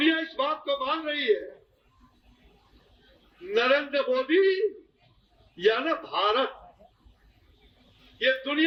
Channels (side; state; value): both; identical; correlation 1.00